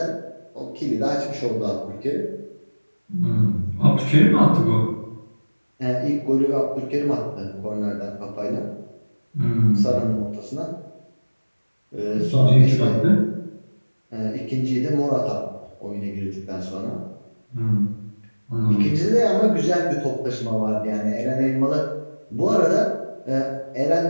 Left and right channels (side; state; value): both; inverted; correlation -1.00